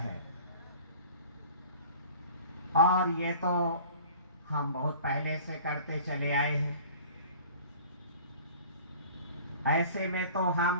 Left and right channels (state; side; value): inverted; both; correlation -0.45